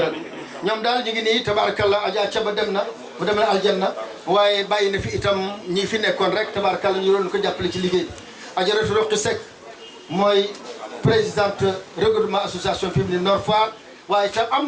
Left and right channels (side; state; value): both; identical; correlation 1.00